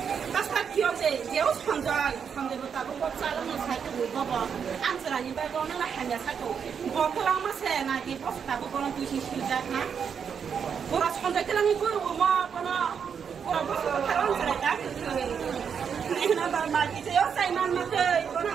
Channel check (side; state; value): left; quieter; 7.0 dB